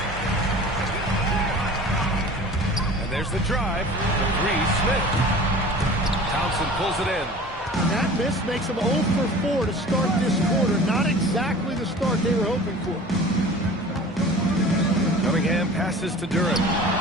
And there's the drive. The 3, Smith. Thompson pulls it in. And that miss makes them 0 for 4 to start this quarter. Not exactly the start they were hoping for. Cunningham passes to Durant.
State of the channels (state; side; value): normal; both; correlation 0.41